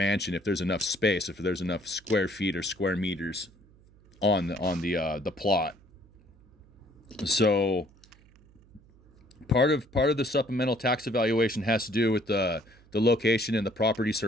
if there's enough space, if there's enough square feet or square meters on the plot. So part of the supplemental tax evaluation has to do with the location and the property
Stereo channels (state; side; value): noise; right; hum, 27 dB below the sound